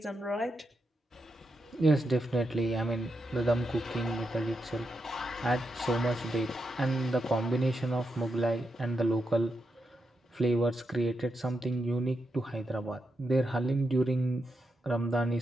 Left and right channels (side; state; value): both; normal; correlation 0.84